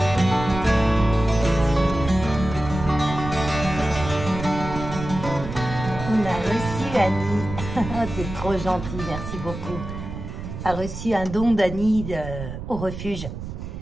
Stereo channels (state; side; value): noise; right; rumble, 8 dB below the sound